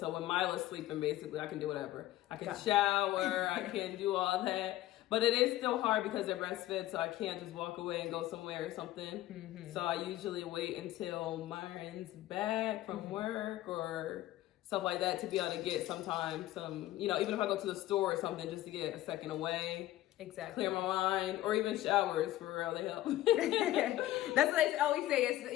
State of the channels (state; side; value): quieter; right; 15.2 dB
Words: when Mila's sleeping, basically, I can do whatever. I can shower, I can do all that. But it is still hard because they're breastfed, so I can't just walk away and go somewhere or something. Mm-hmm. So I usually wait until Myron's back from work or stuff like that to be able to get some, you know, even if I go to the store or something, just to get a second away. Exactly. Clear my mind, or even showers for real, they help. That's what I always say, it's